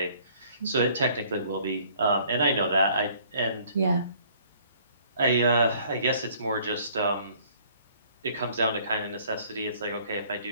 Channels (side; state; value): both; inverted; correlation -0.58